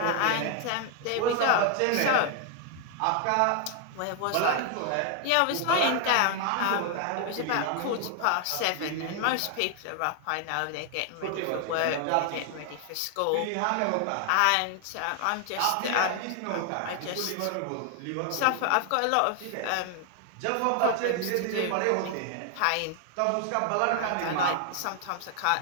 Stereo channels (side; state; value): both; different; correlation 0.00